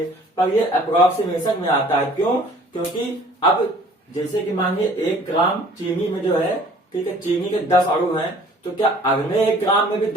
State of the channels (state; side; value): normal; both; correlation 0.52